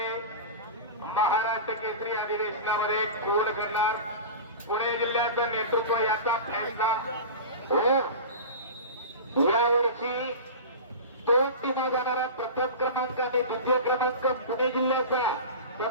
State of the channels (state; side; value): inverted; both; correlation -0.30